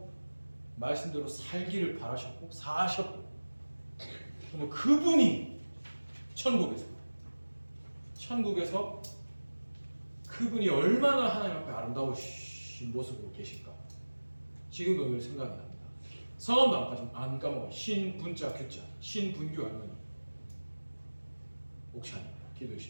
말씀대로 살기를 바라셨고 사셨고 그분이 천국에서 그분이 얼마나 하나님 앞에 아름다우신 모습으로 계실까 지금도 늘 생각이 납니다. 성함도 안 까먹어요. 신분자 규자 신분규 할머니 옥찬이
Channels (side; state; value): both; inverted; correlation -1.00